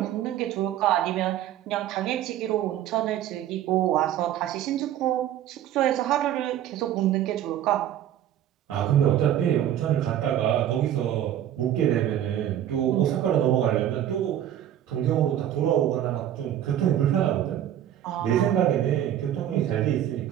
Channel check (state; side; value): quieter; left; 11.3 dB